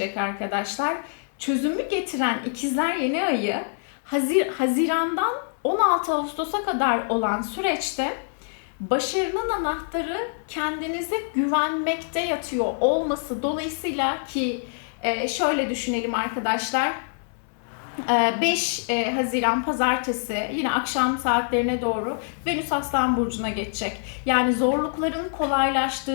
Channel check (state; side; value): silent; right; digital silence